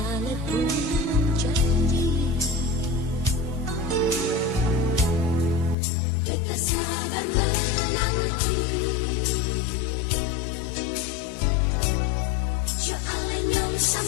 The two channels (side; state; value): right; drops out; at 5.8 s